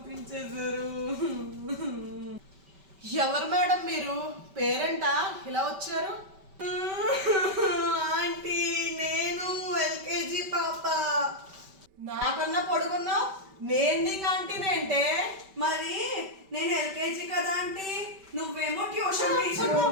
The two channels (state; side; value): late; left; 5.2 ms